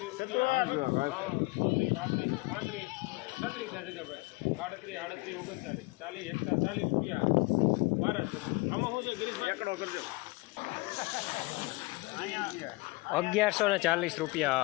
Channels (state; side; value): quieter; right; 24.3 dB